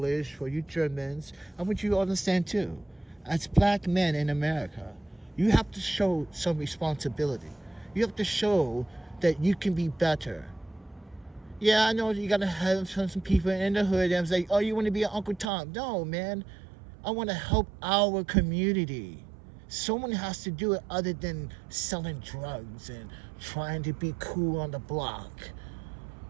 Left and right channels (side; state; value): left; drops out; at 15.5 s